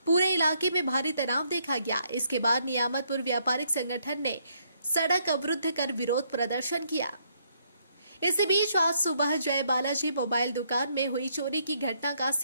पूरे इलाके में भारी तनाव देखा गया। इसके बाद नियामतपुर व्यापारिक संगठन ने सड़क अवरुद्ध कर विरोध प्रदर्शन किया। इसी बीच आज सुबह जय बालाजी मोबाइल दुकान में हुई चोरी की घटना का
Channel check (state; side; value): inverted; both; correlation -0.71